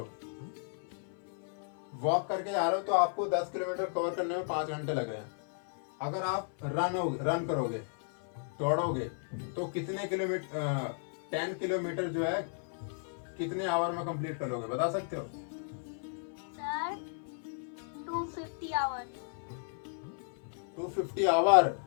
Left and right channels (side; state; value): right; silent; 55 dB below the other